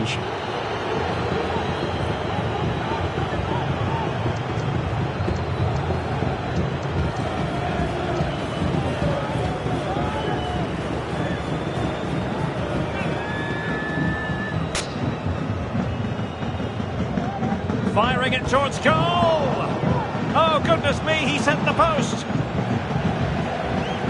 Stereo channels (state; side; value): identical; both; correlation 1.00